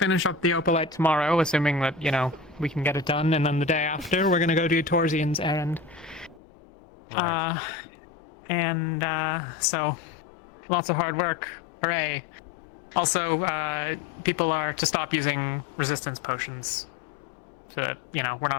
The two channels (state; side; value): drops out; right; at 6.4 s